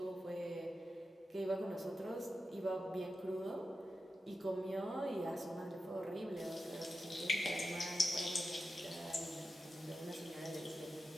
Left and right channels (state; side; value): normal; both; correlation 0.91